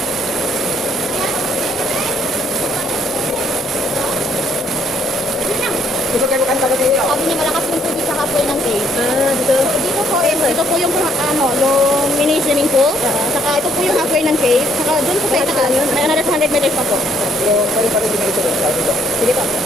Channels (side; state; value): both; normal; correlation 0.67